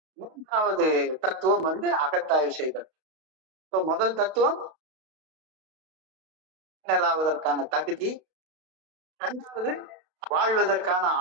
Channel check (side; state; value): left; late; 32 ms